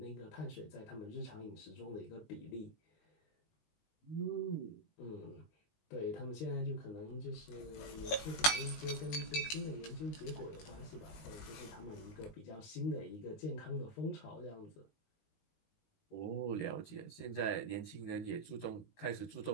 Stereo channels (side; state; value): right; late; 19 ms